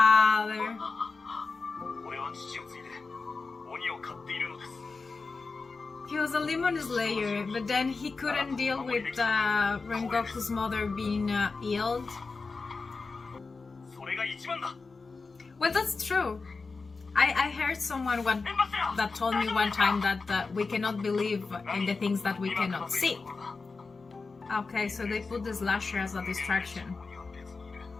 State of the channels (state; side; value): quieter; right; 4.2 dB